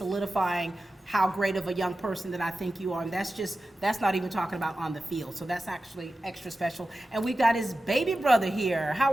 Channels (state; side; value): normal; both; correlation 0.93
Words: how great of a young person that I think you are. And that's not even talking about on the field. So that's actually extra special. And we've got his baby brother here.